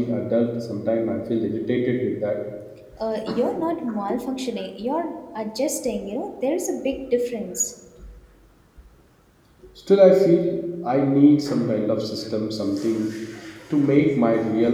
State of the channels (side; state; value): both; identical; correlation 1.00